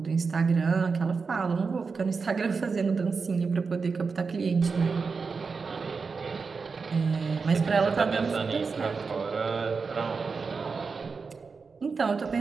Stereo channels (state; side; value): quieter; left; 4.9 dB